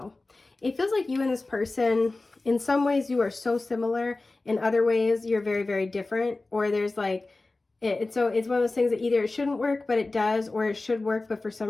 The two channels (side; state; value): right; quieter; 3.2 dB